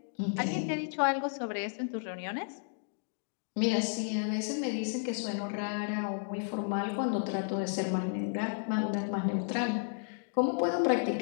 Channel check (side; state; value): right; silent; digital silence